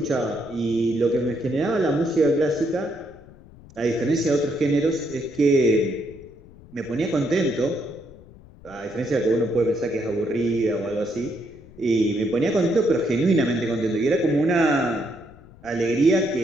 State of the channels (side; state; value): left; noise; rumble, 22 dB below the sound